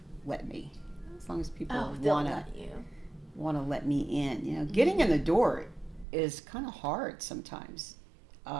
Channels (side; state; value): left; drops out; at 6.1 s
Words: let me, as long as people Oh, they'll want to let you. let me in. You know, getting in the door is kind of hard sometimes.